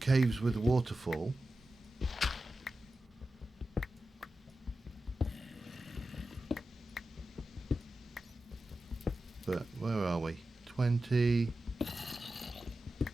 caves with waterfall. But where are we? 20,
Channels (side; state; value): both; normal; correlation 0.92